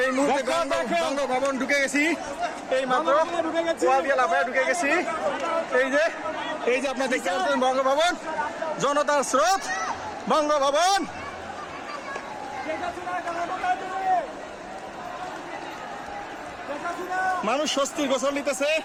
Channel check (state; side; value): identical; both; correlation 1.00